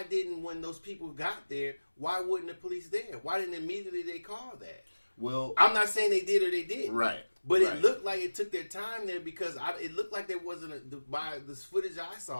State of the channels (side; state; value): both; inverted; correlation -1.00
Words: didn't, when those people got there, why wasn't the police there? Why didn't immediately they call that? Well, I'm not saying they did or they didn't. Right. But it looked like it took their time there because it looked like there wasn't, by this footage I